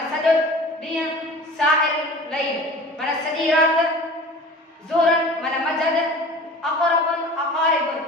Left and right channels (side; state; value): both; normal; correlation 0.41